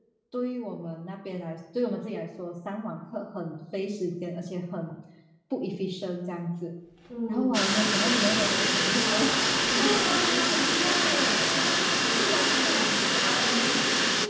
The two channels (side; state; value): both; identical; correlation 1.00